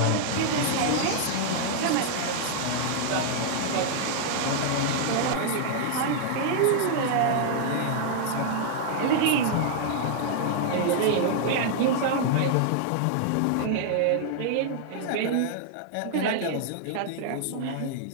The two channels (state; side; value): different; both; correlation -0.01